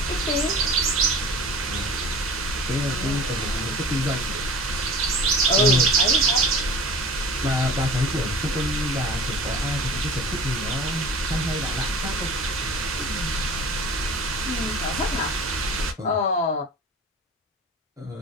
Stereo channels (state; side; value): normal; both; correlation 0.40